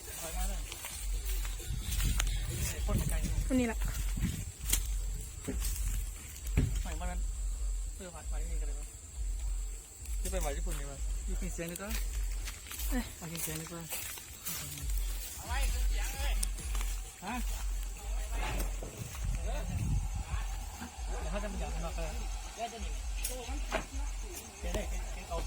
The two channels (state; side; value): identical; both; correlation 1.00